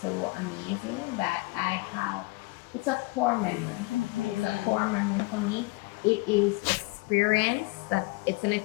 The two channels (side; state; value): right; quieter; 24.2 dB